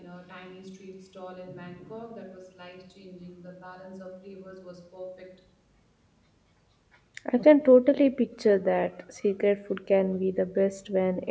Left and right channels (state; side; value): identical; both; correlation 1.00